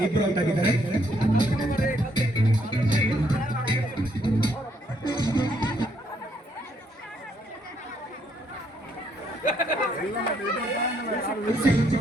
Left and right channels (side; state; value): both; normal; correlation 0.71